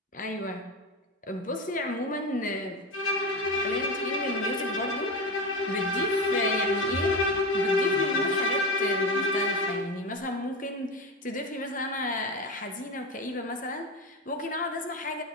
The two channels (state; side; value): normal; both; correlation 0.21